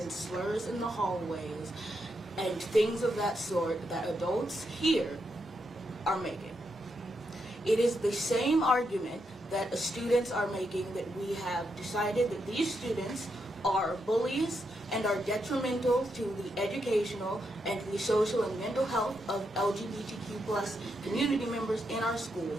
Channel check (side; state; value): both; normal; correlation 0.82